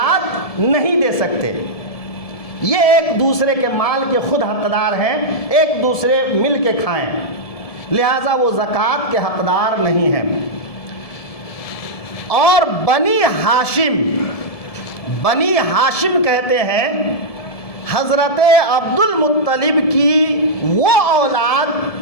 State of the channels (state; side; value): late; right; 1.7 ms